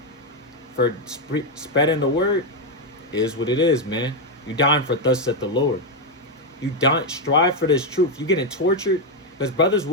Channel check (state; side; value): normal; both; correlation 0.04